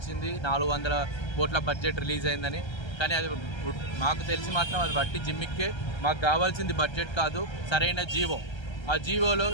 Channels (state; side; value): late; right; 1.3 ms